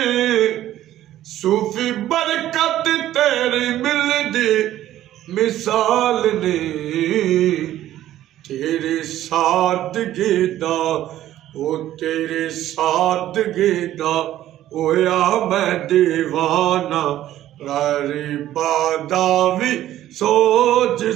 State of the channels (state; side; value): quieter; left; 13.2 dB